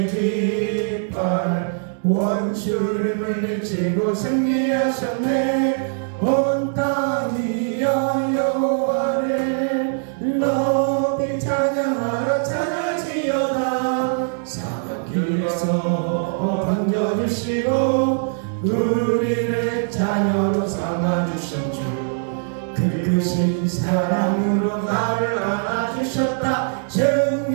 깃발 원수를 물리치고 승리하셨네. 온 땅이 여호와를 높이 찬양하라. 찬양하지어다. 사막길에서 반겨주시고 우리를 자녀로 삼아주신 주 그 크신 사랑으로 나를 안아주셨다.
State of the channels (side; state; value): left; silent; digital silence